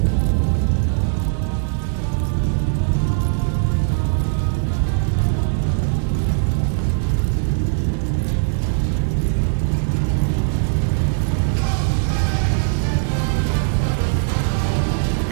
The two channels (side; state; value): left; silent; 61 dB below the other